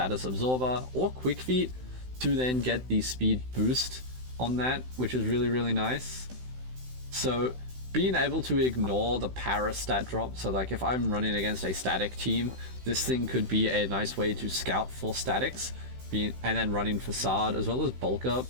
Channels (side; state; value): left; late; 16 ms